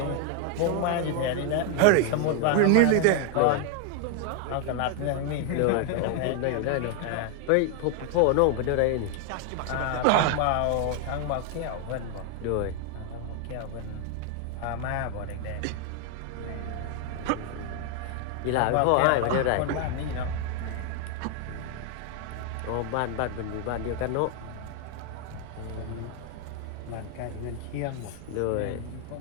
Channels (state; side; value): different; both; correlation 0.00